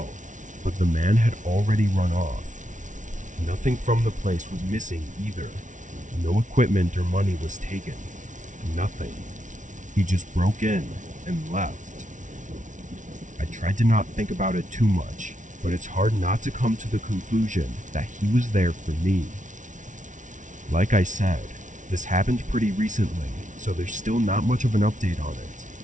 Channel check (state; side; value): late; left; 0.37 ms